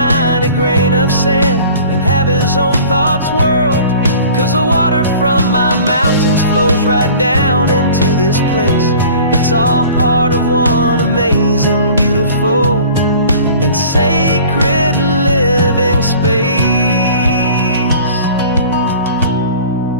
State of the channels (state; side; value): inverted; both; correlation -0.46